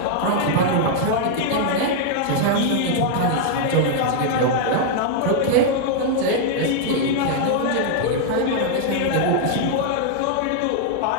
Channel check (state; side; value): different; both; correlation -0.01